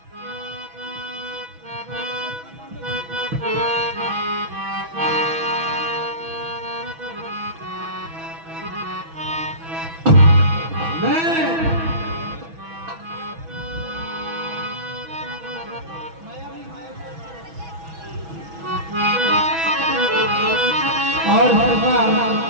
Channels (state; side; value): late; left; 6.1 ms